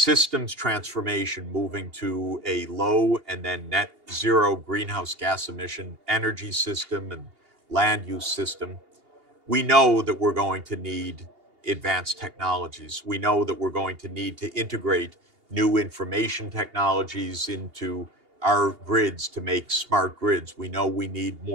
transformation, moving to a low and then net zero greenhouse gas emission energy system and land use system, we know that we're going to need advanced technologies. We know that we're going to need to integrate new information technologies into our grids to make smart grids. We know we need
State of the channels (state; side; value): late; left; 2.8 ms